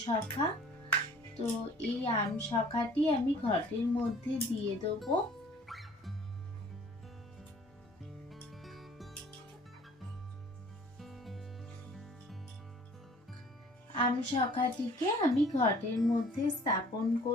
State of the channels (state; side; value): normal; both; correlation 0.53